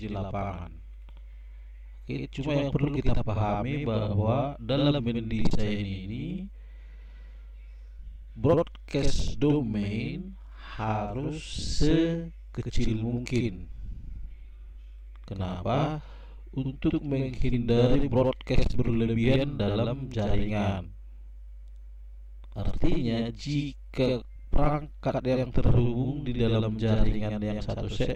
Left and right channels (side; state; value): both; identical; correlation 1.00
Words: di lapangan. Oke, cuma yang perlu kita pahami bahwa dalam mendesain ini broadcast domain harus sekecil mungkin. Kenapa? Untuk menghindari broadcast berlebihan dalam jaringan. Artinya jika perangkat yang terhubung di dalam jaringan yang satu